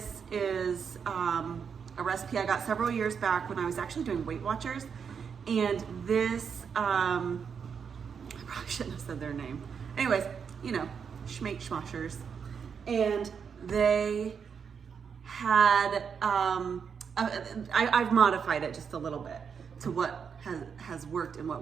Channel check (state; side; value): quieter; left; 6.6 dB